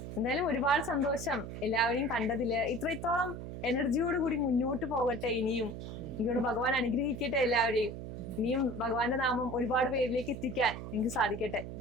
എന്തായാലും ഒരുപാട് സന്തോഷം എല്ലാവരെയും കണ്ടതില്. ഇത്രത്തോളം എനർജിയോട് കൂടി മുന്നോട്ട് പോകട്ടെ. ഇനിയും എനിക്കോട് ഭഗവാൻ അനുഗ്രഹിക്കട്ടെ എല്ലാവരെയും. ഇനിയും ഭഗവാന്റെ നാമം ഒരുപാട് പേരിലേക്ക് എത്തിക്കാൻ എനിക്ക് സാധിക്കട്ടെ.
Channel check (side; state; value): right; noise; hum, 8 dB below the sound